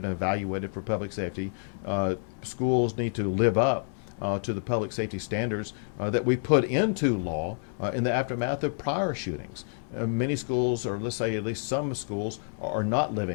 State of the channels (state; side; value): silent; right; digital silence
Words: and evaluated for public safety. Schools need to live up to the public safety standards that we put into law in the aftermath of prior shootings. Many schools, or let's say at least some schools, are not